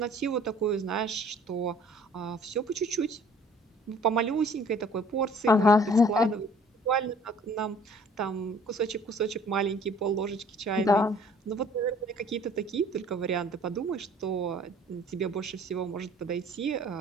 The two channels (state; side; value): normal; both; correlation 0.54